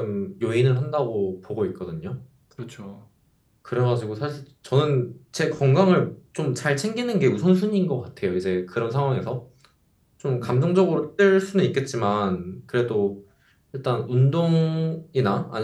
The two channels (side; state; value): both; identical; correlation 1.00